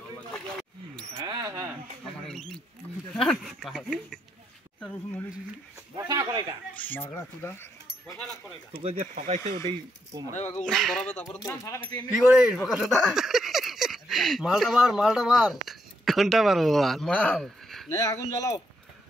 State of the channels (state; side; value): normal; both; correlation 0.77